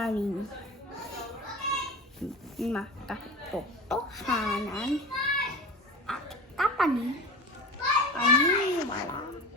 Makatotohanan at kapanin paniniwala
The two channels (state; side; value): normal; both; correlation 0.31